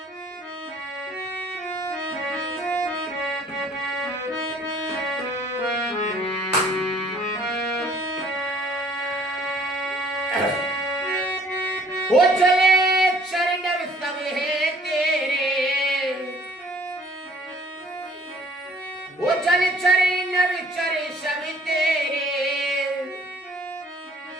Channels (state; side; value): normal; both; correlation 0.58